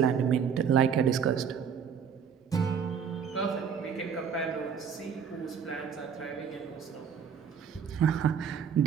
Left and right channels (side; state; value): left; quieter; 7.1 dB